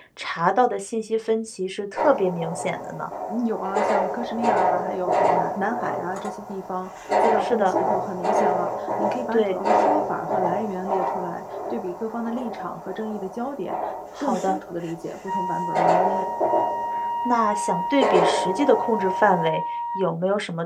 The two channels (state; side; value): identical; both; correlation 1.00